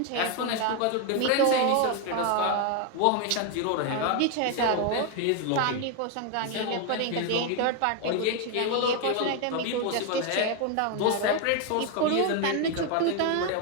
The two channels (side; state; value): both; different; correlation 0.01